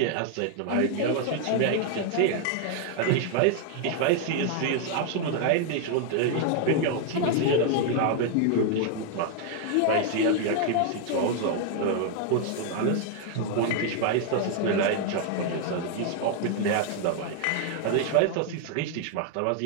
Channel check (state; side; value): different; both; correlation 0.00